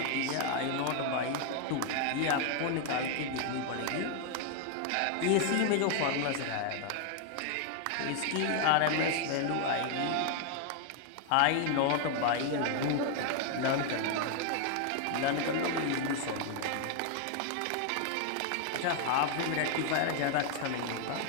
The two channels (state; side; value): different; both; correlation 0.00